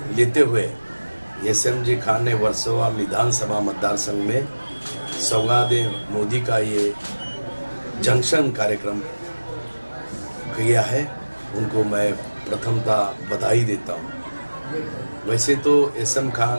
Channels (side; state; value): both; inverted; correlation -1.00